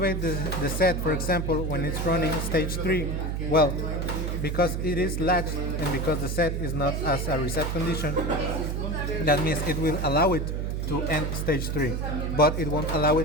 the set, for example, when it's running stage 3, well, because it is latched and because the set is not as a reset condition, that means it will allow it to end stage 3, but it won't allow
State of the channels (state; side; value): noise; right; hum, 1 dB below the sound